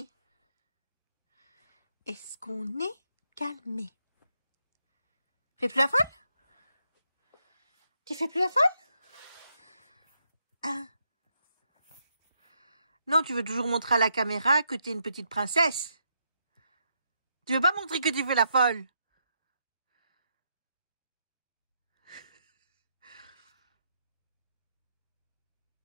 Est-ce qu'on est calmé? Fais plus la folle? Tu fais plus la folle? Ah. Non, tu veux toujours montrer à la caméra que t'es une petite princesse. Tu veux pas montrer que tu fais la folle?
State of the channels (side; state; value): both; inverted; correlation -0.79